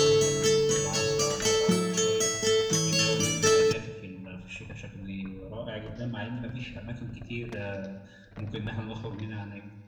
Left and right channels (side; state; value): both; identical; correlation 1.00